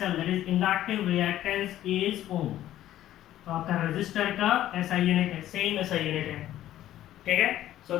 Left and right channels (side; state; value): right; quieter; 13.0 dB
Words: that is inductive reactance is ohm. तो आपका रेजिस्टर का SI यूनिट है, सेम SI यूनिट है, ठीक है. So